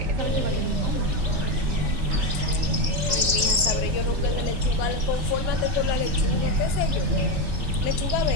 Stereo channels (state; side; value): late; left; 3.4 ms